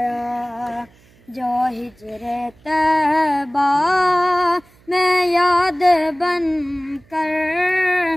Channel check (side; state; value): right; noise; hum, 30 dB below the sound